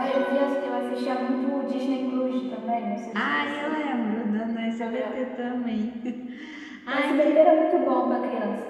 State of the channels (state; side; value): identical; both; correlation 1.00